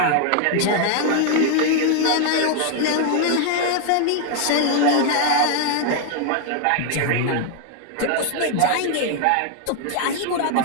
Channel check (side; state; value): both; different; correlation 0.00